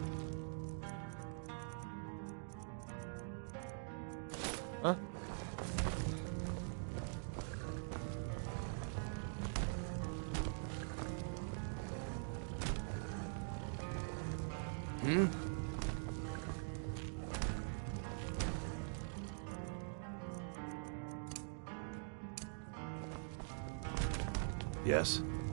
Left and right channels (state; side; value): silent; left; digital silence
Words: Huh? Hmm? Yes?